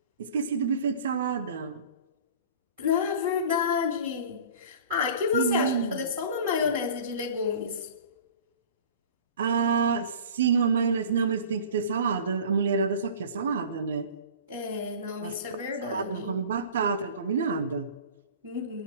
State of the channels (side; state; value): both; inverted; correlation -0.41